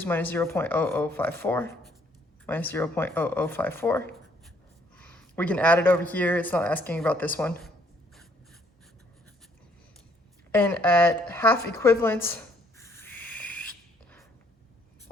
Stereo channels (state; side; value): normal; both; correlation 0.66